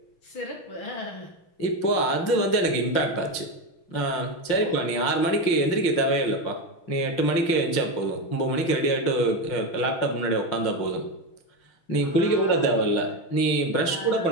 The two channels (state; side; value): late; right; 5.7 ms